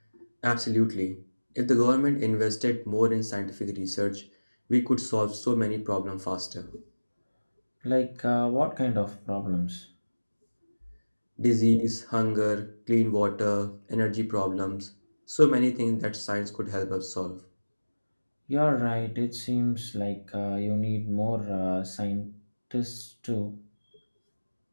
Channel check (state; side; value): inverted; both; correlation -1.00